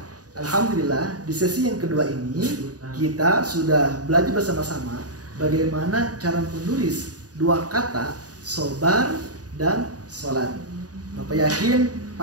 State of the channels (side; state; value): left; late; 0.68 ms